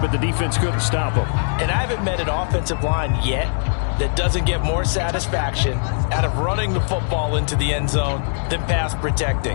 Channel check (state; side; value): silent; right; digital silence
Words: the defense couldn't stop them. And I haven't met an offensive line yet that doesn't get more satisfaction out of running the football into the end zone than pass